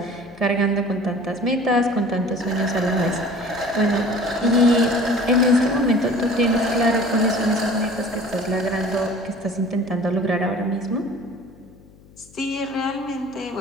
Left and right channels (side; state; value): left; noise; hum, 25 dB below the sound